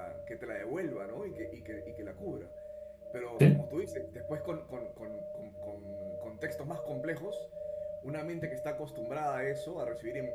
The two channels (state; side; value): identical; both; correlation 1.00